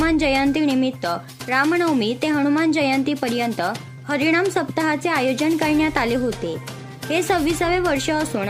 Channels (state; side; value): identical; both; correlation 1.00